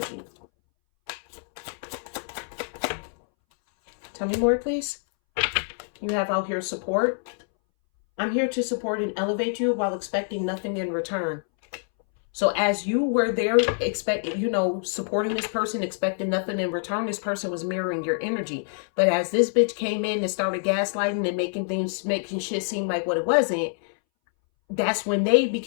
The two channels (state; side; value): silent; right; 61 dB below the other